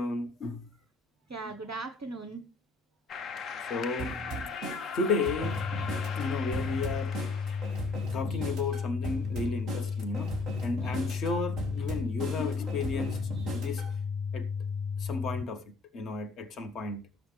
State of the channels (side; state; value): right; quieter; 3.5 dB